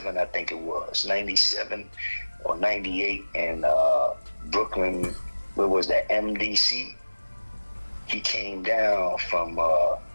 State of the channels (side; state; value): both; inverted; correlation -1.00